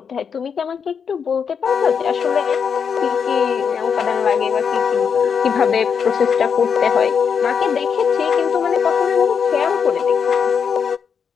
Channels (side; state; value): right; quieter; 6.7 dB